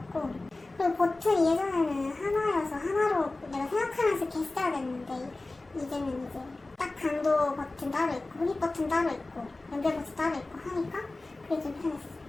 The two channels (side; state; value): right; quieter; 3.1 dB